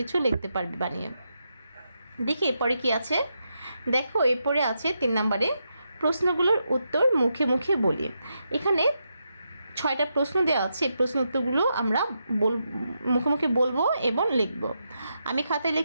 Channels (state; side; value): inverted; both; correlation -0.84